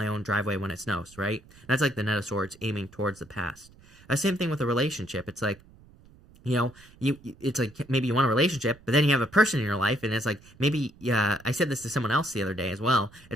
own driveway when it snows, right? That's like the Knight of Swords aiming towards the past. Same thing with a relationship. It's like, you know, it's like maybe you want a relationship, but then you have a person in your life, and it's like maybe, I said this to someone else the other day as well.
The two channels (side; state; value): right; noise; rumble, 25 dB below the sound